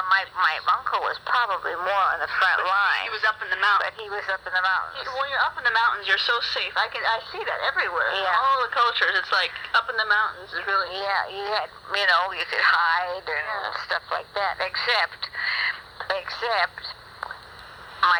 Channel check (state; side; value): identical; both; correlation 1.00